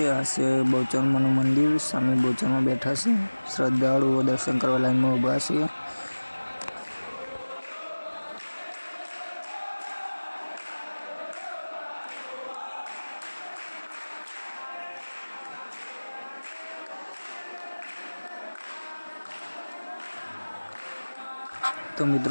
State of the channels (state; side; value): inverted; both; correlation -1.00